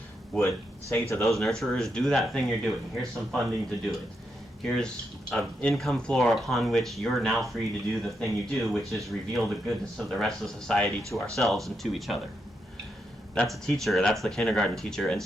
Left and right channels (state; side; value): normal; both; correlation 0.82